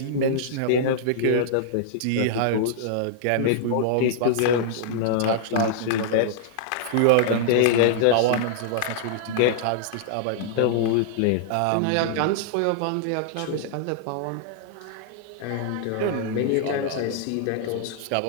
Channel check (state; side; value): different; both; correlation -0.01